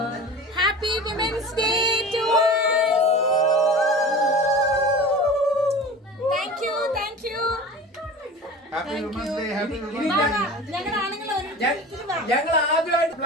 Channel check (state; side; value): normal; both; correlation 0.36